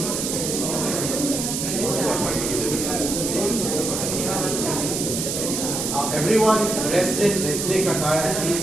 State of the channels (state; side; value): noise; right; hiss, 2 dB below the sound